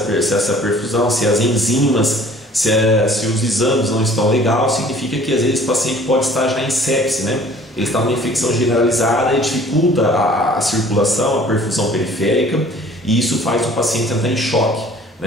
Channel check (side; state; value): both; normal; correlation 0.52